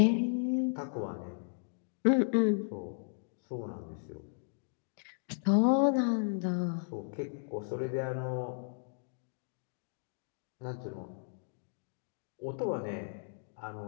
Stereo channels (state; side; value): silent; right; digital silence